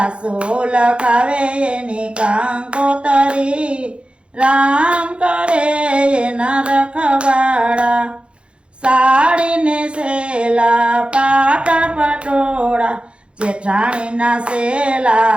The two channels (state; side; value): late; left; 0.058 ms